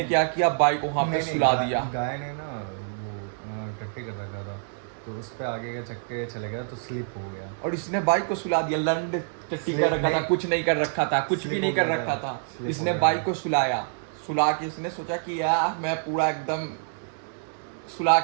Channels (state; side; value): silent; left; digital silence